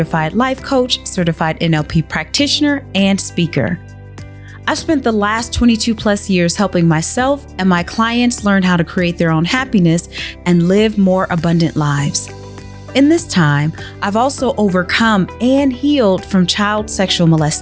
life coach, certified NLP practitioner, and speaker. I've spent the last 22 plus years helping myself and my clients learn how to create their own happiness and live more abundant lives. In this time, I've also overcome and healed from child sexual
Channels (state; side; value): identical; both; correlation 1.00